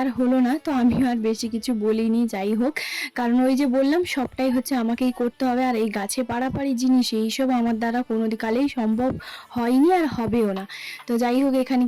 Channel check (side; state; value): both; identical; correlation 1.00